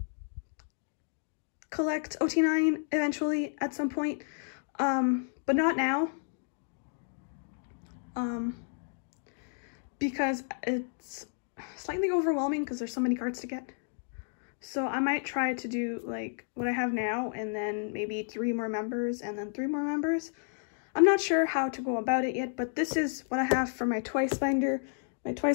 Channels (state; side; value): silent; right; 57 dB below the other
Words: collect OT9 eventually at some point, but not now. Because it's slightly overwhelming because there's so many cards to get. So I might try to do like what I have now, and then maybe 3 more members, and then 3 more members. I'm not sure how to go about it yet, but this is what I have for my Twice binder. My